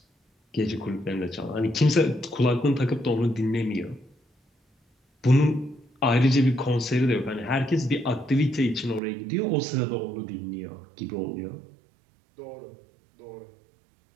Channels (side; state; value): left; drops out; at 9.0 s